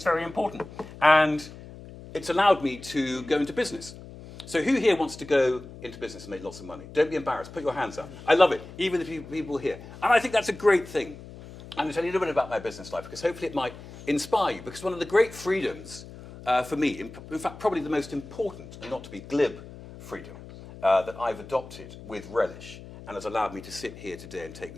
very important. And it's allowed me to go into business. So who here wants to go into business and make lots of money? Don't be embarrassed. Put your hands up. I love it, even the people here. And I think that's a great thing. I'm going to tell you a little bit about my business life, because hopefully it might inspire you. Because one of the great freedoms for me, in fact, probably the most important, and not to be glib, freedom that I've adopted with relish and has allowed me to sit here today and take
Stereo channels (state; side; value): noise; left; hum, 16 dB below the sound